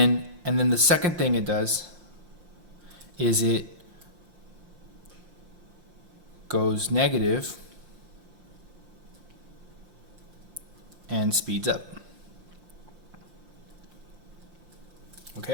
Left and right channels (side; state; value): left; late; 5.7 ms